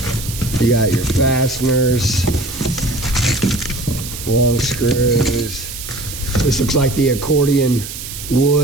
you got your fasteners, long screws. This looks like the accordion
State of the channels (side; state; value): right; noise; hiss, 10 dB below the sound